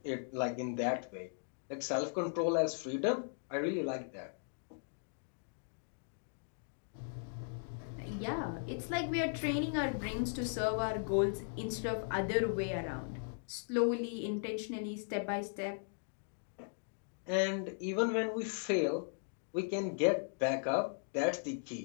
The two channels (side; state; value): right; silent; digital silence